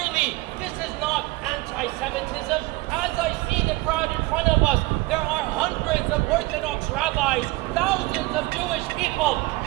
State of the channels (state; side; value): quieter; left; 21.5 dB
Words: this is not anti-Semitism. As I see the crowd in front of us, there are hundreds of Orthodox rabbis, thousands of Jewish people.